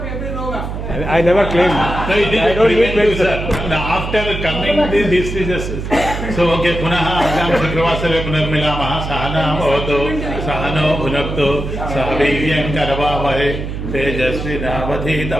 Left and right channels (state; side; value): noise; right; hum, 6 dB below the sound